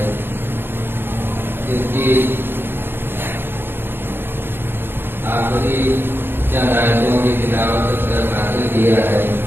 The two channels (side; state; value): left; late; 0.10 ms